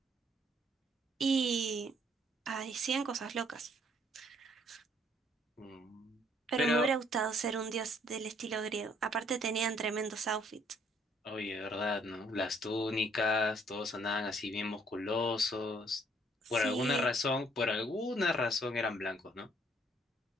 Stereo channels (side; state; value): both; normal; correlation 0.63